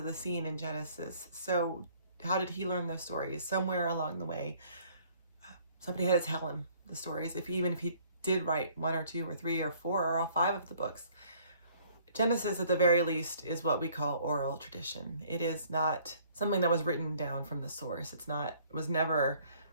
the scene in Genesis. So how did he learn those stories? Somewhere along the way, somebody had to tell him the stories, even if he did write 1 or 2 or 3 or 4 or all 5 of the books. Genesis, at the very least, is what we call oral tradition. It is not something that was written down from the source. It was never,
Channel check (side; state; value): both; inverted; correlation -0.59